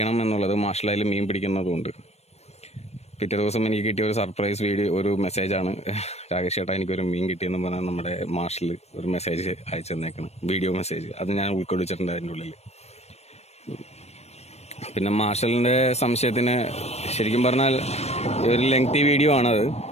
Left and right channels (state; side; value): late; right; 0.31 ms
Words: എന്നുള്ളത്. മാർഷൽ അതിൽ മീൻ പിടിക്കുന്നതുകൊണ്ട് പിറ്റേ ദിവസം എനിക്ക് കിട്ടിയ ഒരു സർപ്രൈസ് വീഡിയോ, ഒരു മെസ്സേജാണ്. രാകേഷ് ചേട്ടാ എനിക്കൊരു മീൻ കിട്ടിയെന്ന് പറഞ്ഞാൽ നമ്മുടെ മാർഷൽ ഒരു മെസ്സേജ് അയച്ചു തന്നേക്കണം, വീഡിയോ മെസ്സേജ്. അത് ഞാൻ ഉൾക്കൊള്ളിച്ചിട്ടുണ്ട് അതിൻ്റെ ഉള്ളിൽ. പിന്നെ മാർഷലിൻ്റെ സംശയത്തിന് ശരിക്കും പറഞ്ഞാൽ ഒരു ലെങ്തി വീഡിയോ ആണത്.